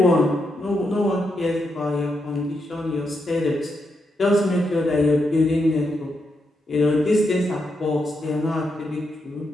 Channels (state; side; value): normal; both; correlation 0.82